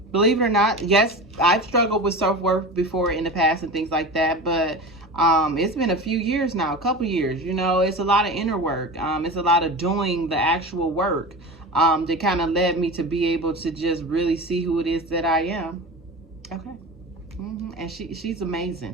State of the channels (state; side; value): normal; both; correlation 0.30